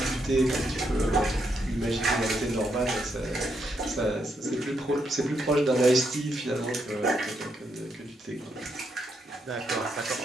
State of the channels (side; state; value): both; normal; correlation 0.78